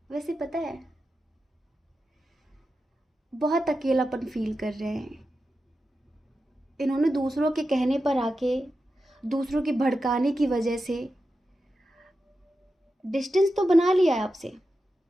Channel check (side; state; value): both; normal; correlation 0.90